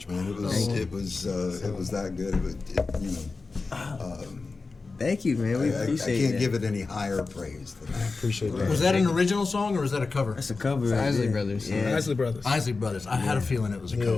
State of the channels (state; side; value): quieter; right; 4.0 dB